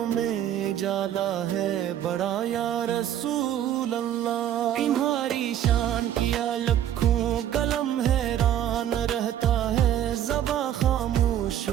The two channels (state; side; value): quieter; left; 10.9 dB